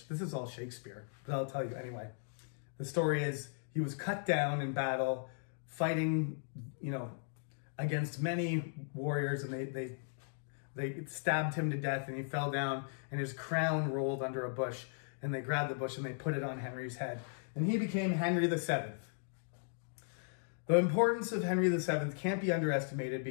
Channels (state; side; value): silent; right; digital silence